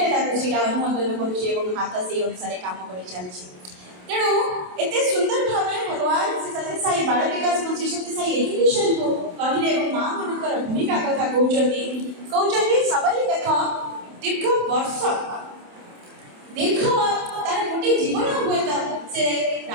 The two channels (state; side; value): late; left; 27 ms